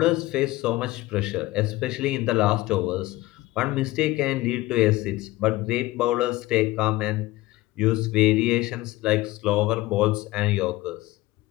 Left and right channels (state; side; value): quieter; right; 18.8 dB